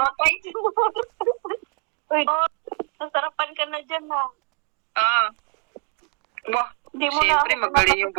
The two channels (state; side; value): quieter; left; 35.4 dB